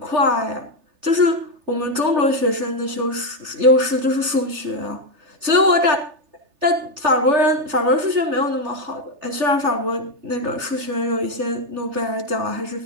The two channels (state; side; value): late; left; 3.3 ms